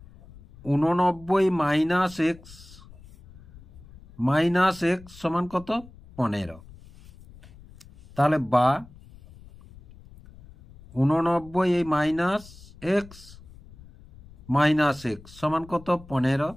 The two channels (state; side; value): noise; left; rumble, 21 dB below the sound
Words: 89 মাইনাস x সমান কত? 15। তাহলে বা 89 মাইনাস x সমান কত? 15।